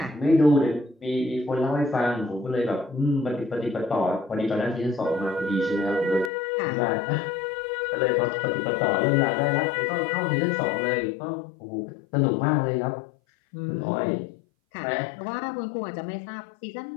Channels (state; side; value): drops out; right; at 6.3 s